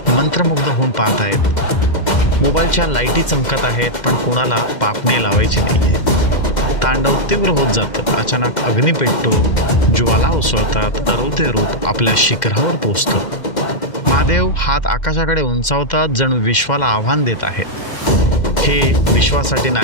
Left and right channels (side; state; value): right; late; 2.1 ms